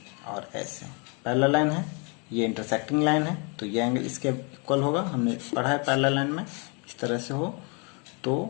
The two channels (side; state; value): right; quieter; 33.9 dB